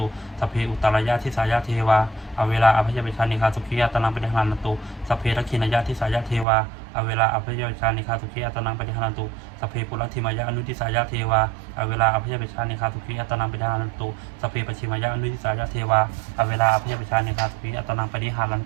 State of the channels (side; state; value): left; drops out; at 6.5 s